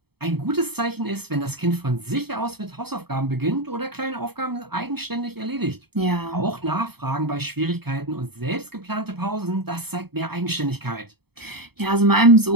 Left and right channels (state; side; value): late; left; 0.97 ms